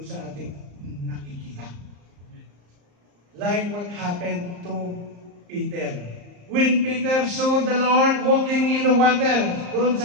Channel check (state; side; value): late; left; 34 ms